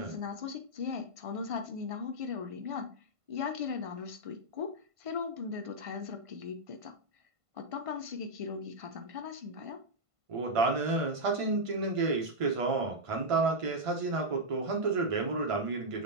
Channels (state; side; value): late; left; 1.5 ms